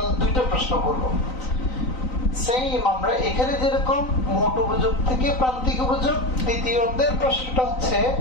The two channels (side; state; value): right; late; 3.9 ms